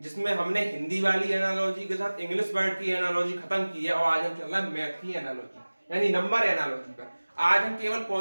हमने हिंदी वाली एनालॉजी के साथ इंग्लिश वर्ड की एनालॉजी खत्म की है और आज हम चल रहा है मैथ की एनालॉजी यानी नंबर एनालॉजी पर। आज हम केवल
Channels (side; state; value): both; inverted; correlation -1.00